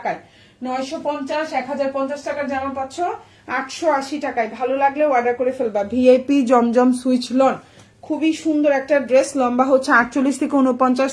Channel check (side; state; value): both; identical; correlation 1.00